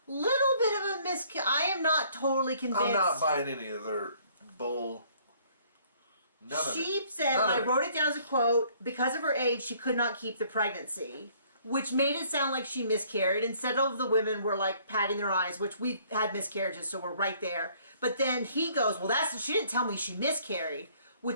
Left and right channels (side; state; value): both; inverted; correlation -0.60